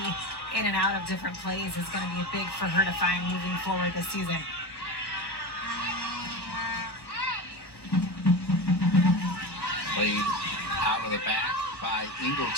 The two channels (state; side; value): late; right; 1.2 ms